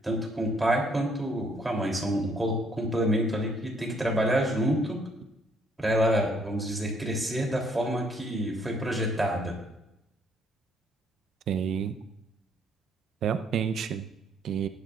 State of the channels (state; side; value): normal; both; correlation 0.66